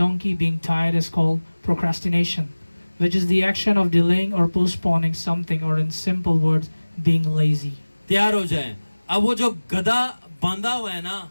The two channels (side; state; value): both; inverted; correlation -1.00